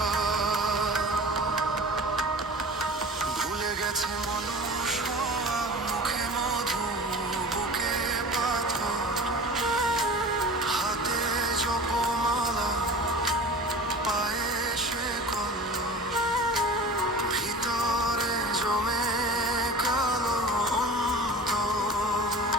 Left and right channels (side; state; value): both; normal; correlation 0.37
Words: ভুলে গেছে মানুষ হওয়া, মুখে মধু বুকে পাথর, হাতে জপমালা পায়ে শেকল, ভিতরে জমে কালো অন্তর।